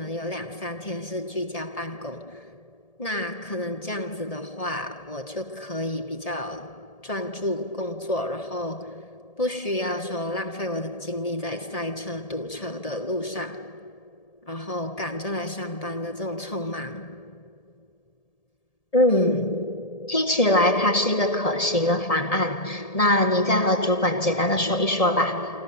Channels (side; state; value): right; late; 1.7 ms